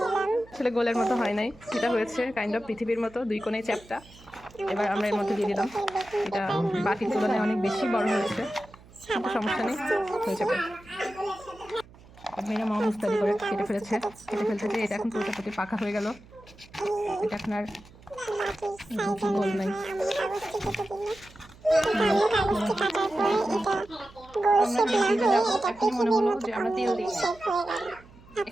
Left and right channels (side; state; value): right; noise; hum, 23 dB below the sound